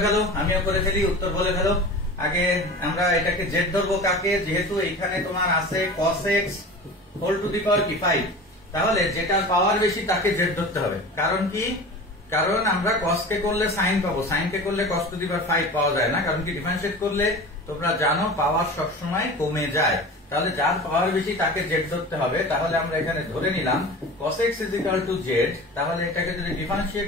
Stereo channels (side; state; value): both; normal; correlation 0.35